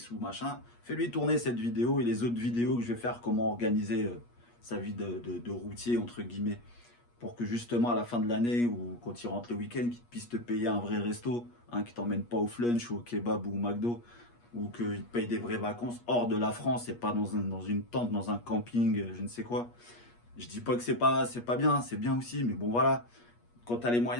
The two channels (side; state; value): right; late; 8.4 ms